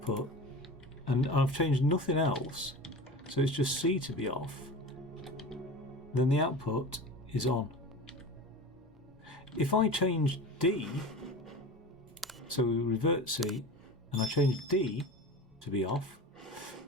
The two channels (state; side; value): normal; both; correlation 0.32